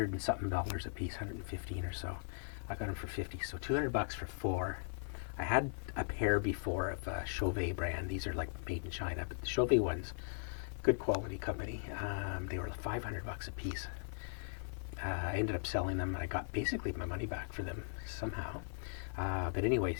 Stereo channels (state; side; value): silent; right; 52 dB below the other